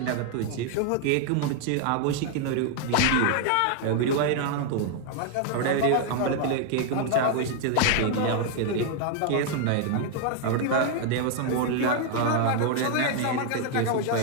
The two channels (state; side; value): different; both; correlation 0.00